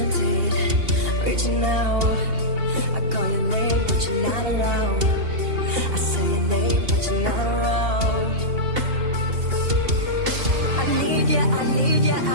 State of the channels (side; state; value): left; late; 2.8 ms